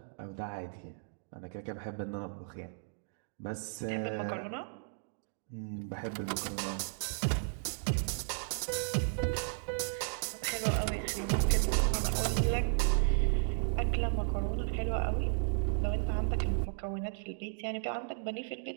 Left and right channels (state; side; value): silent; left; digital silence